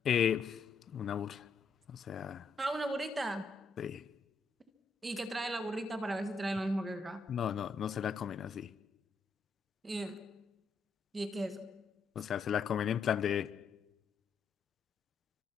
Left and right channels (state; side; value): quieter; right; 4.3 dB